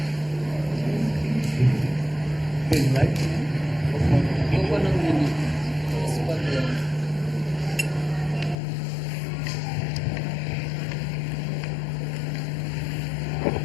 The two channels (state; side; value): drops out; right; at 8.6 s